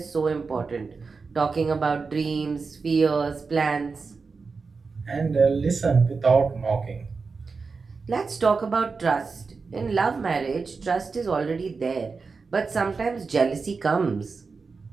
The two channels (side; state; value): left; quieter; 4.6 dB